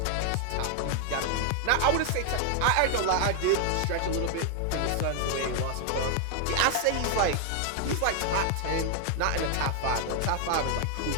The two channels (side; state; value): both; different; correlation 0.00